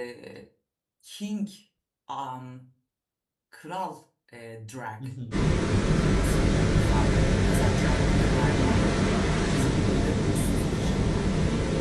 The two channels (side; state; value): both; identical; correlation 1.00